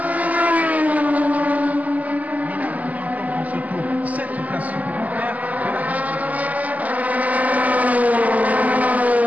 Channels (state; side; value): late; left; 0.076 ms